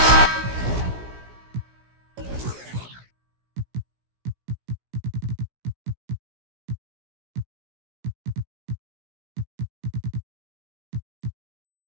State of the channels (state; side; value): late; left; 16 ms